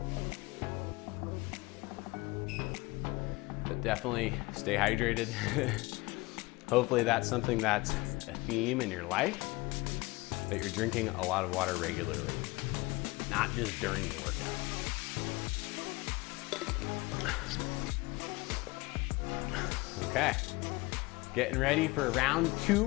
But definitely stay hydrated. Hopefully that's something that's a theme in your life, that you're drinking a lot of water regularly, not just during the workout. Okay, getting ready for round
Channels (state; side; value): quieter; right; 22.9 dB